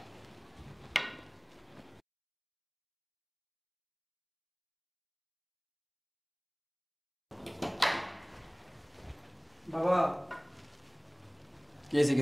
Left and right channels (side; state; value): both; identical; correlation 1.00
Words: বাবা কি হয়েছে,